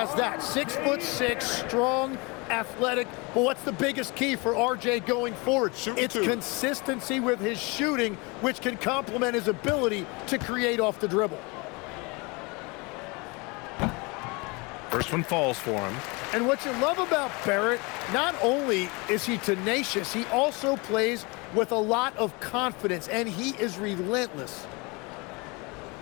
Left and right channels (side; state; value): right; quieter; 27.7 dB